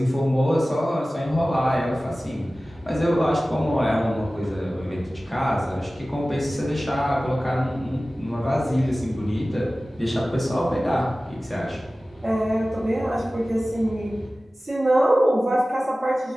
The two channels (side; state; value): both; normal; correlation 0.97